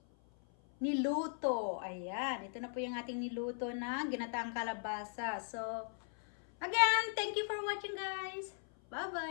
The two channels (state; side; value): silent; right; 52 dB below the other